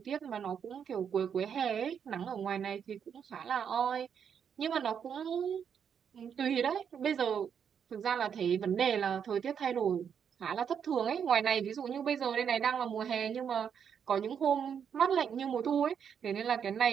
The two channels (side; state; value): left; quieter; 7.7 dB